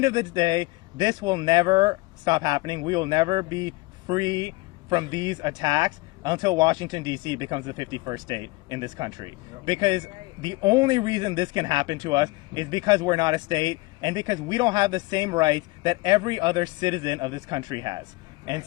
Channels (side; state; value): right; quieter; 23.0 dB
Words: of the day, this will never stop happening. We will never be free from these attacks until Washington, D.C. becomes the 51st state in this country. Because the only reason this can happen to us is because we're not a state, and because we don't have the same rights that every other citizen of this country has. And